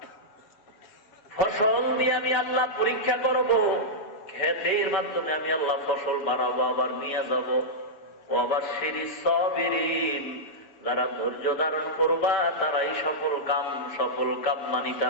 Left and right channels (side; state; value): right; late; 6.8 ms